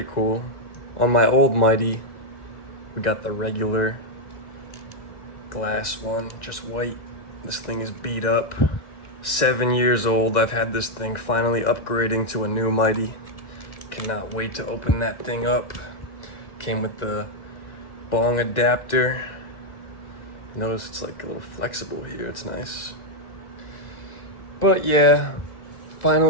cool. On my old Mighty, we got the regular glass one, just white. This thing is beat up. 7 years old. I've had this thing finally upgrading to a new Mighty. Cannot wait to open that thing up. Came with the bong adapter. Notice it's like a little flexible here. It's nice. But yeah,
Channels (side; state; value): right; late; 1.9 ms